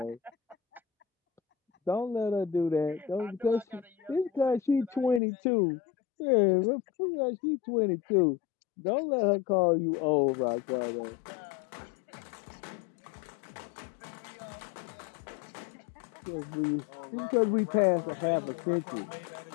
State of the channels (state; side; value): drops out; right; at 5.2 s